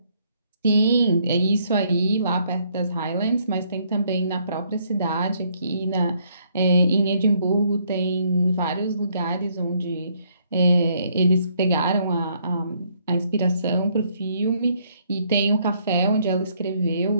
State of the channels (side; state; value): both; inverted; correlation -0.69